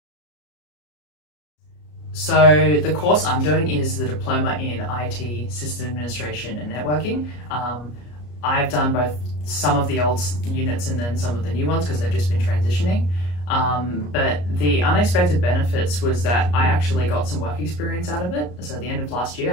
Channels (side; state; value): right; late; 34 ms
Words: So the course I'm doing is the Diploma in IT, System Administration and Networking. I've done both some of the old units and then some of the new ones because they've just been transitioning. But the unexpected benefits was that I actually got some work experience out of it. So at the end of last